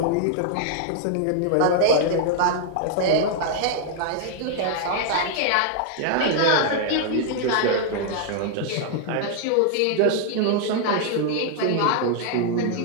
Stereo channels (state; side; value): different; both; correlation 0.00